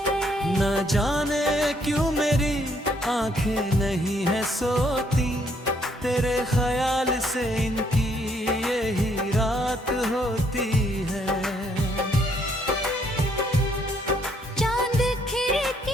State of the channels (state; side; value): normal; both; correlation 0.69